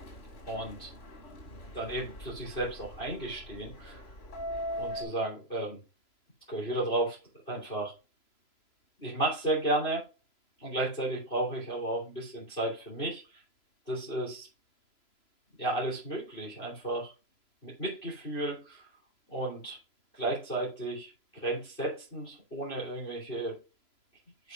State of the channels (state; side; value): late; right; 3.0 ms